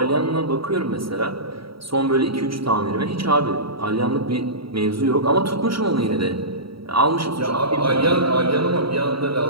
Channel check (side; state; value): left; late; 0.75 ms